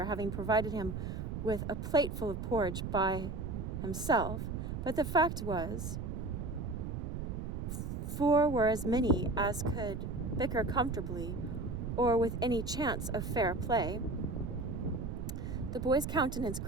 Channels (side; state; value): right; noise; rumble, 4 dB below the sound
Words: having provided him with a plateful of porridge by himself, but the fact was, 4 were as many as could bicker comfortably or with any chance of fair play. The boy's countenance